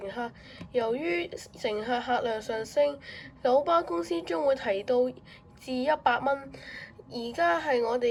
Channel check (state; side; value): identical; both; correlation 1.00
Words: 客由於乘客客量上升，九巴公司將會提到至100蚊。而家係我哋